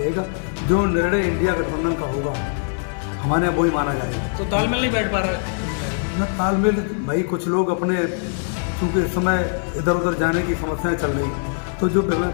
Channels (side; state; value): right; silent; 55 dB below the other